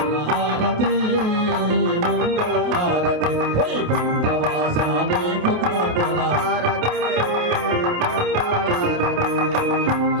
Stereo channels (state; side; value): late; left; 28 ms